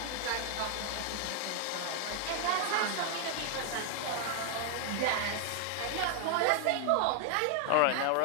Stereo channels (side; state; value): both; different; correlation 0.00